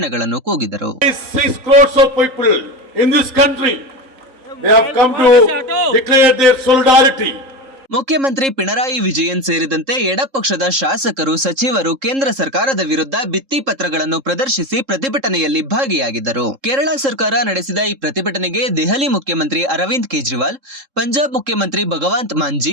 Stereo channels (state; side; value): late; left; 3.7 ms